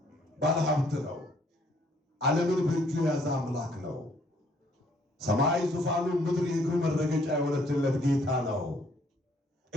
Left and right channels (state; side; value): normal; both; correlation 0.65